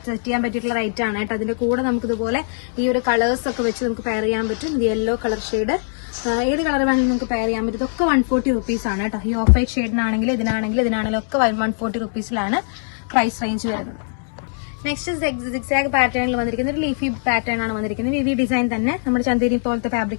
ചെയ്യാൻ പറ്റിയിട്ടുള്ള റൈറ്റ് ആണ് കേട്ടോ. അതിന്റെ കൂടെ നമുക്ക് ഇതുപോലെ ഈ ഒരു കളേഴ്സ് ഒക്കെ വെച്ച് നമുക്ക് പെയർ ചെയ്യാൻ പറ്റും. യെല്ലോ കളർ ഷെയ്ഡ് ഏത് കളർ വേണമെങ്കിലും നമുക്ക് പെയർ ചെയ്യാൻ പറ്റും. ഇതൊക്കെ 140 റുപ്പീസ് ആണ് കേട്ടോ. ഈ ഓഫ് വൈറ്റ് ഷെയ്ഡിനാണെങ്കിലും ഇതിനാണെങ്കിലും ഒക്കെ 140 റുപ്പീസിലാണ് പ്രൈസ് റേഞ്ച് വരുന്നത്. നെക്സ്റ്റ് സിക്സാഗ് പാറ്റേണിൽ വന്നിരിക്കുന്നത് ഒരു ലീഫി പാറ്റേൺ ആണ് വന്നിരിക്കുന്നത്. വി ഡിസൈൻ തന്നെ നമ്മുടെ ചന്തേരി പോലത്തെ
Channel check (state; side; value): silent; right; digital silence